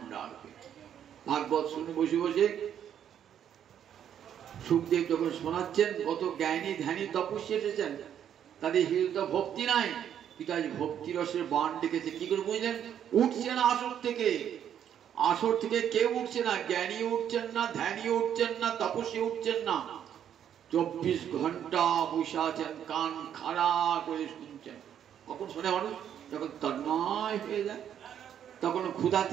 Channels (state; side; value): quieter; left; 9.5 dB